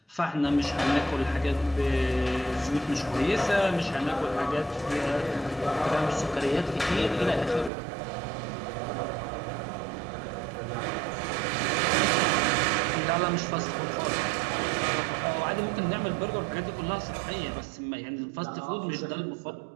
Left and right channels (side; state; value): left; drops out; at 7.7 s